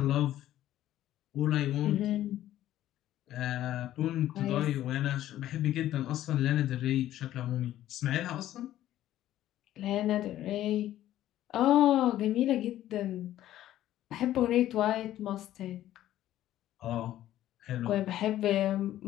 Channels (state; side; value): quieter; right; 13.2 dB